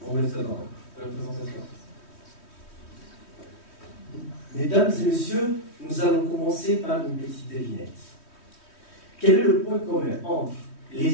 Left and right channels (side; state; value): right; late; 3.1 ms